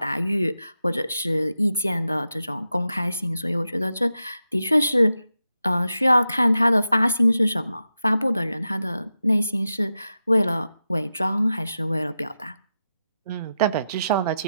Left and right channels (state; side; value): inverted; both; correlation -0.90